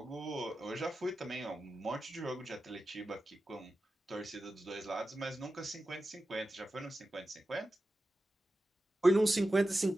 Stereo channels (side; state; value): both; normal; correlation 0.93